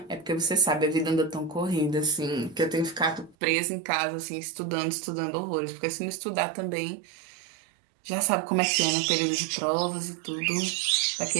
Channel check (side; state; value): left; drops out; at 3.4 s